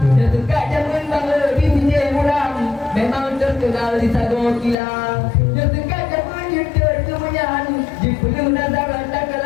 yang suka jamun bangla di sini muram memang terkenal di sago kilang yang suka jamun yudur kemunyan di penuh nazaran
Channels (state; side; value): drops out; right; at 4.8 s